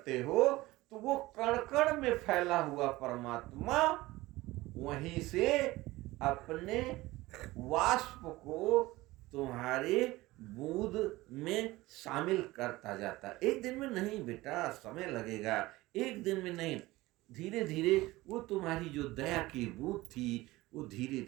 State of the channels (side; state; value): left; quieter; 19.1 dB